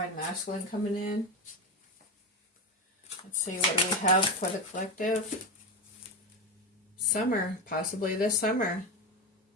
masculine coming in. Let's see, what do we have for the collective? Summer, possibly this summer.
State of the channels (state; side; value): normal; both; correlation 0.16